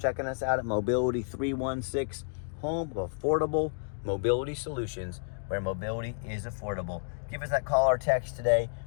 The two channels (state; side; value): silent; right; digital silence